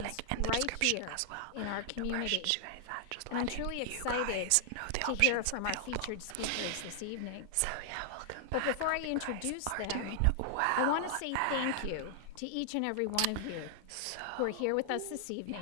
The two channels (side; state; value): both; different; correlation -0.01